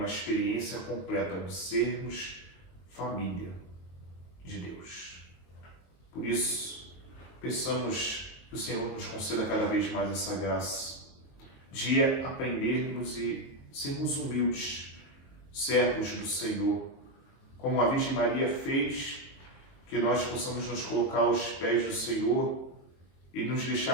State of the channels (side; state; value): right; late; 22 ms